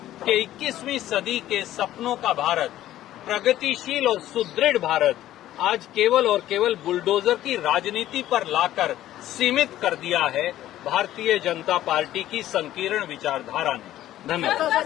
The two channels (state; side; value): quieter; right; 13.5 dB